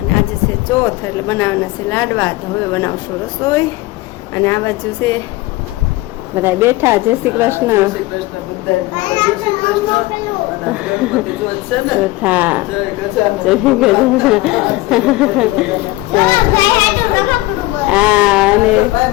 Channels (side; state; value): right; quieter; 19.5 dB